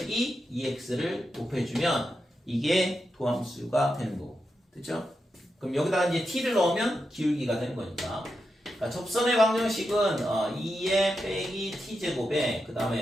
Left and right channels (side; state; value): both; normal; correlation 0.87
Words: 2x를 곱해주면 이게 도함수가 되는 거고, 됐죠? 그럼 여기다가 이제 t를 넣으면 기울기가 되는 거니까. 그러니까 접선의 방정식은 2의 빼기 t제곱에 그